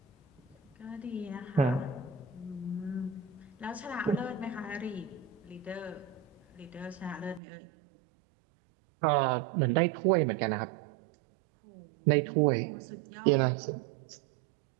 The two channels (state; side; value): drops out; left; at 7.4 s